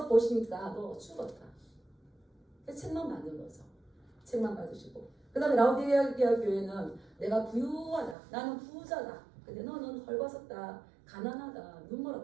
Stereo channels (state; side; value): drops out; left; at 8.2 s